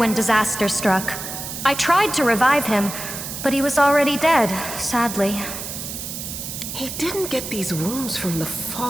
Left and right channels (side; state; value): right; noise; hiss, 7 dB below the sound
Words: disaster struck. I tried to revive him, but he was already dead, sadly. He didn't get these wounds from the